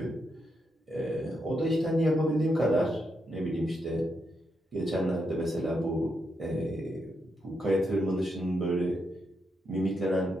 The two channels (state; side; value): normal; both; correlation 0.82